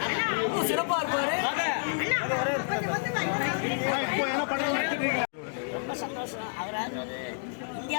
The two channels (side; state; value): right; silent; digital silence